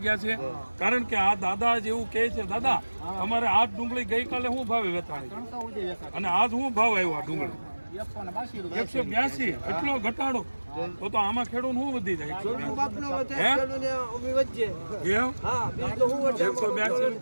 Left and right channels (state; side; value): inverted; both; correlation -1.00